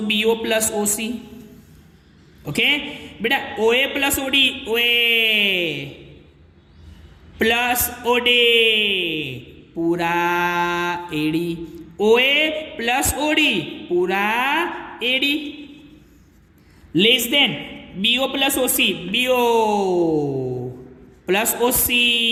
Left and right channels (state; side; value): identical; both; correlation 1.00